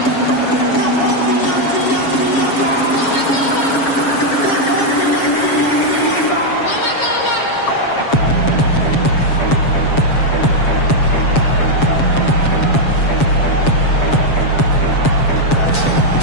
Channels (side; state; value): right; late; 7.3 ms